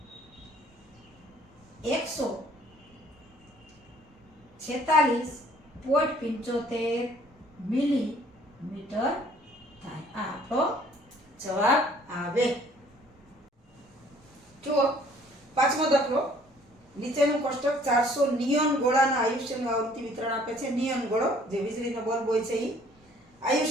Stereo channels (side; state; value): both; normal; correlation 0.58